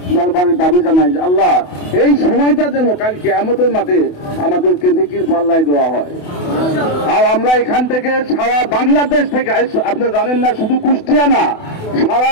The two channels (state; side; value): late; right; 28 ms